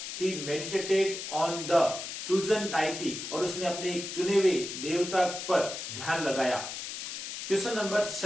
He meditated on the chosen deity, और उसने अपने चुने हुए देवता पर ध्यान लगाया। Question number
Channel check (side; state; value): left; noise; hiss, 7 dB below the sound